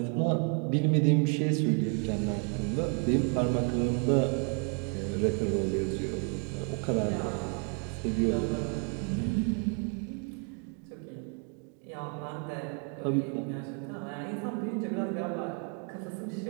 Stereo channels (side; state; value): left; quieter; 35.1 dB